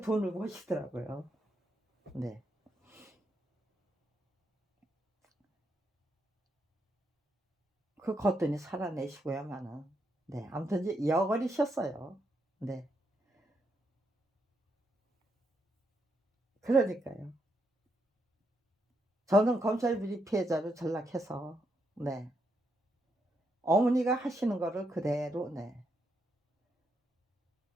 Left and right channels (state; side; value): normal; both; correlation 0.80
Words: 돈을 버시더라고요. 네. 그 거뜬히 살아내시고야만은 네, 아무튼 이제 여걸이셨어요. 네. 그러니까요. 저는 검찰 비리 피해자로 전락해서 네. 어머니가 하시는 거를 그대로 네.